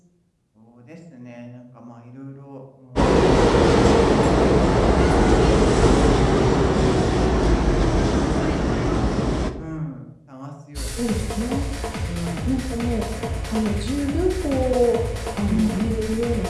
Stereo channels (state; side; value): identical; both; correlation 1.00